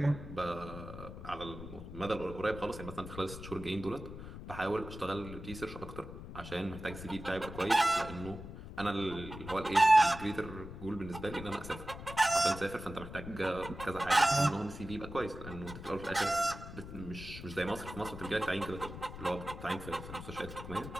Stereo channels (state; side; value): noise; left; rumble, 11 dB below the sound